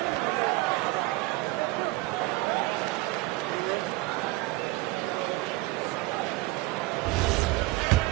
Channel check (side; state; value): left; quieter; 20.6 dB